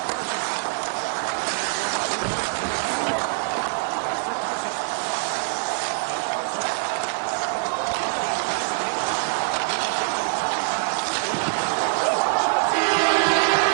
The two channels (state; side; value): silent; left; digital silence